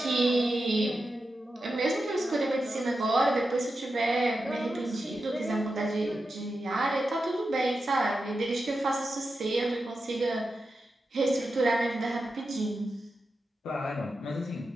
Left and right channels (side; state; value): both; normal; correlation 0.90